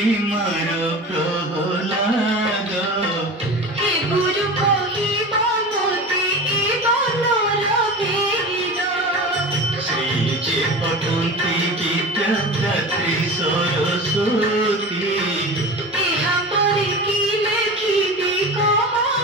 मार प्रहलाद हे गुरु कहिब मोते ए बनर भेद श्री जे पठन्ति विद्यादात्री सरस्वती एहा परे कि लेखिबि कह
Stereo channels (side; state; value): both; normal; correlation 0.31